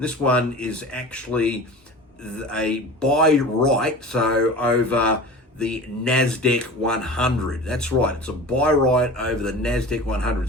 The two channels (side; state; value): both; normal; correlation 0.36